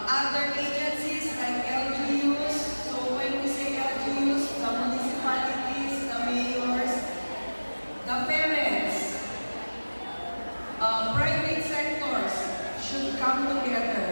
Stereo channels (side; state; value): both; inverted; correlation -1.00